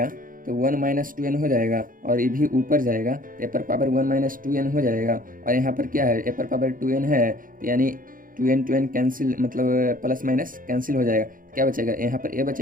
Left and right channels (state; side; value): late; left; 0.40 ms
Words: तो 1 माइनस 2n हो जाएगा, और ये भी ऊपर जाएगा तो ए पर पावर 1 माइनस 2n हो जाएगा, और यहाँ पर क्या है, ए पर पावर 2n है, यानी 2n कैंसिल, मतलब प्लस माइनस कैंसिल हो जाएगा, क्या बचेगा, यहाँ पर ए